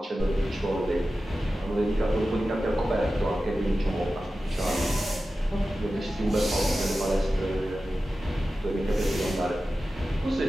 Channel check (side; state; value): both; normal; correlation 0.94